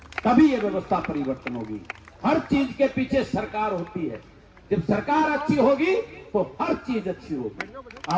तभी ये व्यवस्था परिवर्तन होगी। हर चीज के पीछे सरकार होती है, जब सरकार अच्छी होगी तो हर चीज अच्छी होगी।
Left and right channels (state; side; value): identical; both; correlation 1.00